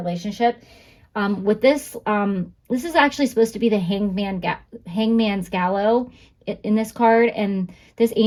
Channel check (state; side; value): identical; both; correlation 1.00